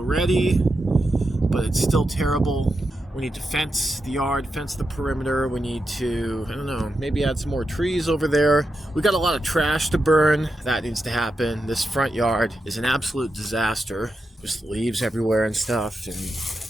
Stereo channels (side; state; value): both; normal; correlation 0.87